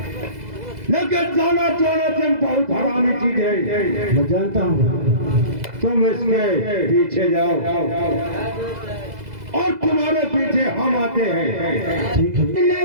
लेकिन जाना तुम बहुत हरामी चीज है। मैं जानता हूँ। तुम इसके पीछे जाओ और तुम्हारे पीछे हम आते हैं। ठीक है?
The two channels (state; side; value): late; left; 2.0 ms